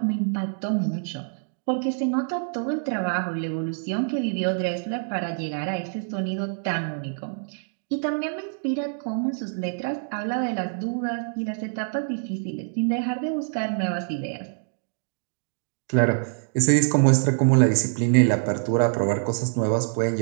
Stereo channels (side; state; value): left; silent; digital silence